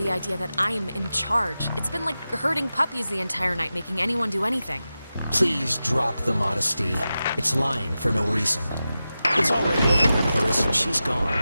idea that I'm in charge? It's been like herding puppies the entire night, making anyone do anything. Please drop the modesty. It's lying for no reason. It's already over with Clarissa. She's gone.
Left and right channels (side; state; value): both; inverted; correlation -0.93